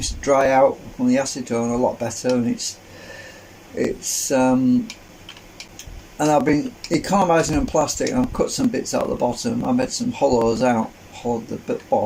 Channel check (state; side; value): identical; both; correlation 1.00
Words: to dry out from the acetone a lot better, and and I've been economising on plastic, and I've cut some bits out of the bottom. I made some hollows out, hollowed the